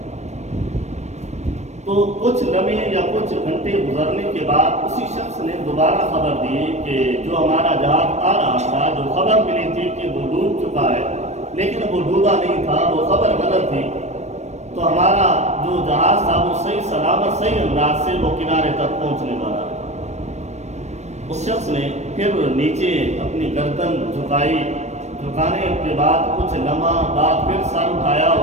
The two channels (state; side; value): late; left; 0.33 ms